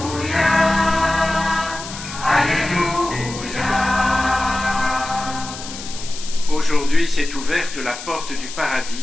Aujourd'hui s'est ouverte la porte du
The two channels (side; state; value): left; noise; hiss, 11 dB below the sound